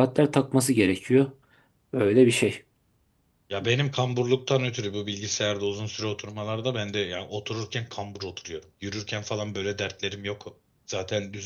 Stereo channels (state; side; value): identical; both; correlation 1.00